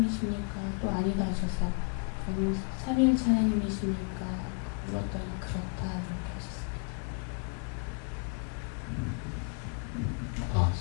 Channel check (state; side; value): quieter; right; 38.0 dB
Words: 또 아니다 하셔서 그럼 삼위일체 하나님이십니까? 물었더니 그렇다 이렇게 하셨습니다.